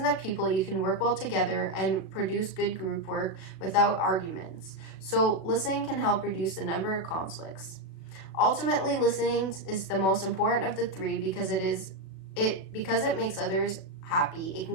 to people, you can work well together and produce good group work without arguments. So listening can help reduce the number of conflicts. Ultimately, listening is the most important of the three because it makes others happy, it can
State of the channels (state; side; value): late; right; 37 ms